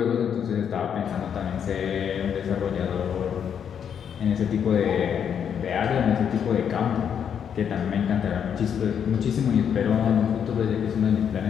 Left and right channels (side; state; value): right; quieter; 8.1 dB